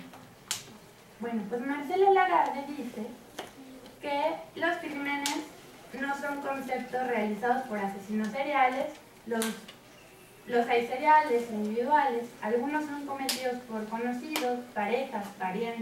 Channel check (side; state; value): both; identical; correlation 1.00